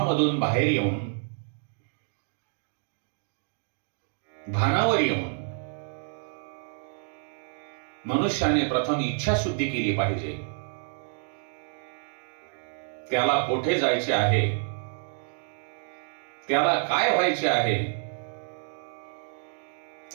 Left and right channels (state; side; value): silent; left; digital silence